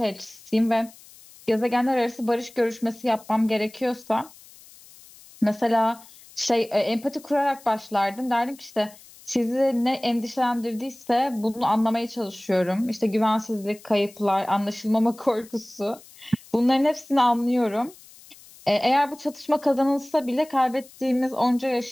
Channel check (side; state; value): left; noise; hiss, 22 dB below the sound